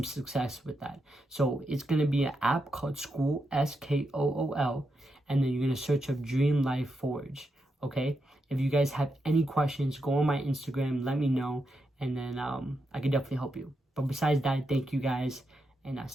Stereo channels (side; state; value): both; normal; correlation 0.84